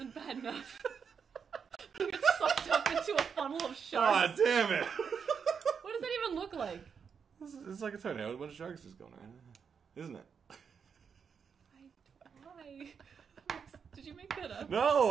bad enough. It's sucked up into a funnel of Oh, sharks. damn it! What does that even look like? It's like a tornado with a bunch of sharks just going around, isn't it? Why? Did you make that up?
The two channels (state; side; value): quieter; left; 6.5 dB